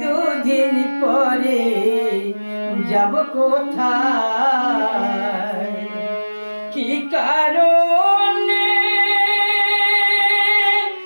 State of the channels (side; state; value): both; inverted; correlation -1.00